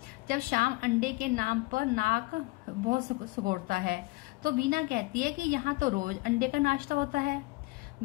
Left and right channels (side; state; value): right; quieter; 22.8 dB